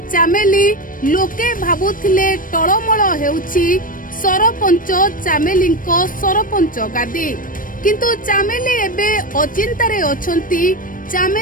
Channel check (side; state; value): right; late; 0.40 ms